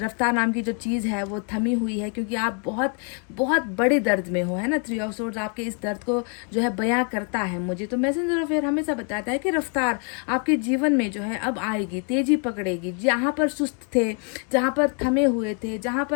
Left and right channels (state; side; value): quieter; right; 39.9 dB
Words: नाम की जो चीज़ है वो थमी हुई है, क्योंकि आप बहुत बहुत बड़े दर्द में हो, है ना। 3 ऑफ सोर्ड्स आपके इस दर्द को जो है बयां करता है मुझे। तो मैसेंजर ऑफ एयर हमेशा बताता है कि रफ्तार आपके जीवन में जो है अब आएगी, तेजी पकड़ेगी। जहाँ पर सुस्त थे, जहाँ पर थमे हुए थे, जहाँ